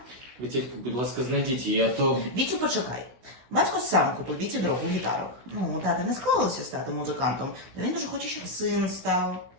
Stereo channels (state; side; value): late; left; 16 ms